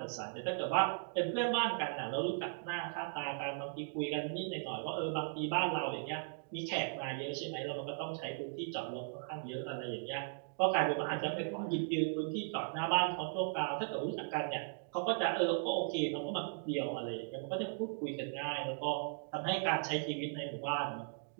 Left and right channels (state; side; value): silent; left; digital silence